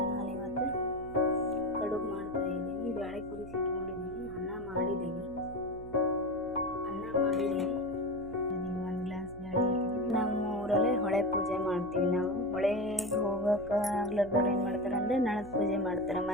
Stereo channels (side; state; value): right; noise; hum, 17 dB below the sound